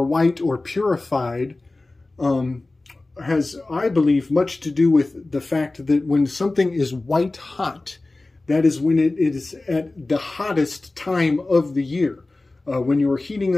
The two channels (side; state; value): right; quieter; 3.1 dB